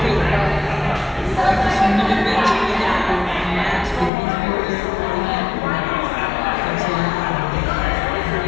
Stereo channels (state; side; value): drops out; right; at 4.1 s